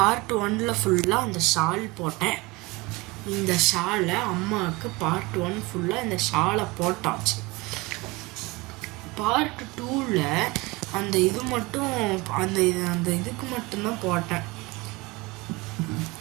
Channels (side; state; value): left; quieter; 23.0 dB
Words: 1 ஃபுல்லாக அந்த ஷால் போட்டேன். இந்த ஷாலை அம்மாவுக்கு பார்ட் 1 ஃபுல்லாக இந்த ஷாலை போட்டாச்சு. பார்ட் 2ல் அந்த இது மட்டும் அந்த இதுக்கு மட்டும்தான் போட்டேன்.